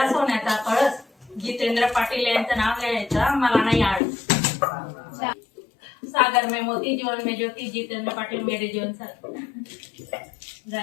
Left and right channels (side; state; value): right; drops out; at 4.0 s